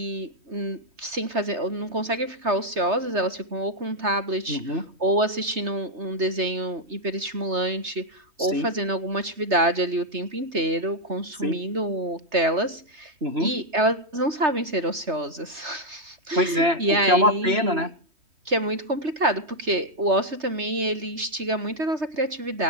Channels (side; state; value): left; late; 3.1 ms